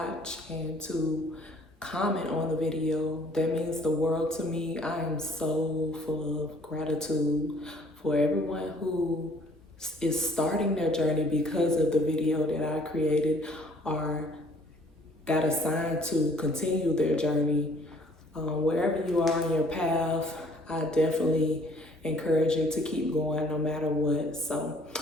and to comment on the video. That means the world to me. I am so full of gratitude for everyone who is starting their journey because of the video that I created, or got assigned to continue their journey. Wherever you are in your path, I definitely encourage you to keep going no matter what. So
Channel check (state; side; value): normal; both; correlation 0.58